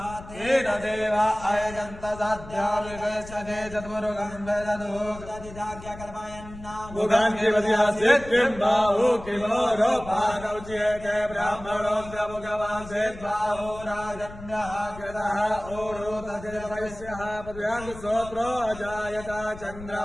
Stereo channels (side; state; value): left; noise; rumble, 15 dB below the sound